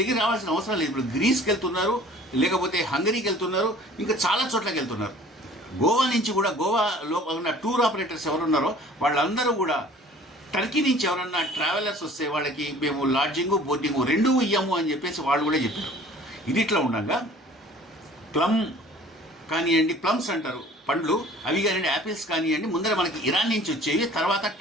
రావాల్సిన అవసరం లేదు. ఇప్పుడు గ్రీస్కి వెళ్తున్నారు, లేకపోతే హంగరీకి వెళ్తున్నారు, ఇంకా చాలా చోట్లకి వెళ్తున్నారు. గోవా నుంచి కూడా, గోవాలో ఉన్న టూర్ ఆపరేటర్స్ ఎవరున్నారో వాళ్ళందరూ కూడా టర్కీ నుంచి ఎవరన్నా ట్రావెలర్స్ వస్తే వాళ్ళకి మేము లాడ్జింగు, బోర్డింగు రెండూ ఇయ్యము అని చెప్పేసి వాళ్ళు కూడా చెప్పారు. ఇది ఇట్లా ఉండగా ప్లమ్ కానివ్వండి, ప్లమ్స్ అంటారు పండ్లు, అవి కానివ్వండి, యాపిల్స్ కానివ్వండి, ముందర మనకి ఇరాన్ నుంచి వచ్చేవి, తర్వాత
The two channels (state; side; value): normal; both; correlation 0.49